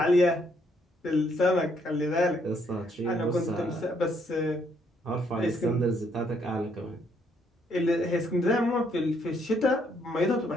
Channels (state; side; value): normal; both; correlation 0.70